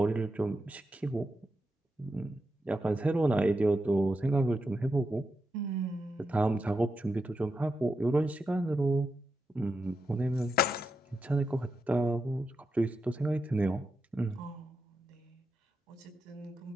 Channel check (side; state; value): both; normal; correlation 0.87